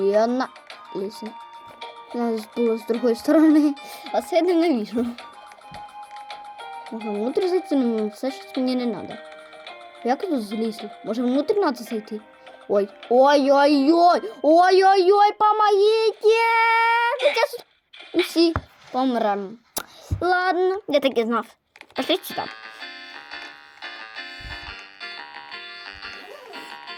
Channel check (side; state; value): both; identical; correlation 1.00